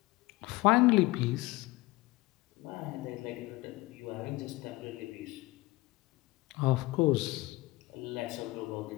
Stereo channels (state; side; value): quieter; right; 20.6 dB